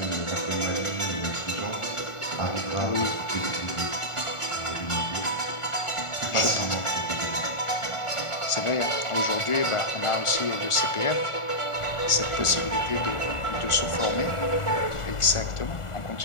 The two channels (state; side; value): late; right; 1.4 ms